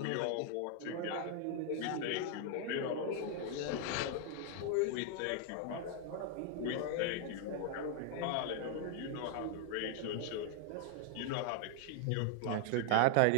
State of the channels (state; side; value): different; both; correlation 0.00